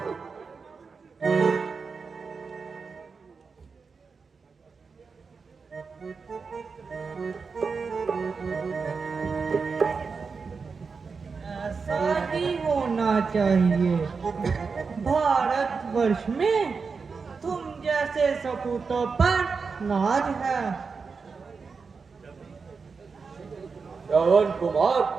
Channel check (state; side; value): quieter; left; 5.0 dB